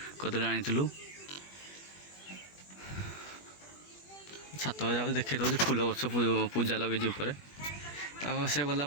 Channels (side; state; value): right; late; 21 ms